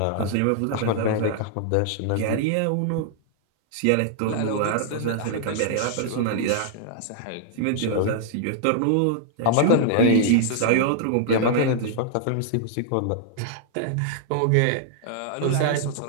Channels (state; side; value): different; both; correlation -0.01